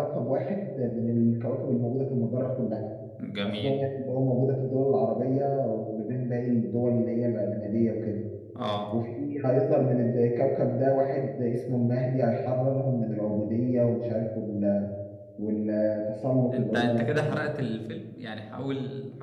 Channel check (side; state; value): both; identical; correlation 1.00